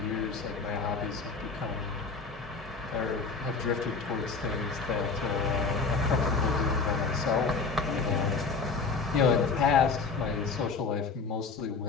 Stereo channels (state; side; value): quieter; right; 4.6 dB